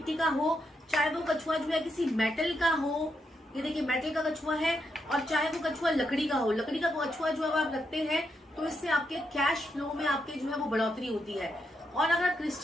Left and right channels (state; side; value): normal; both; correlation 0.82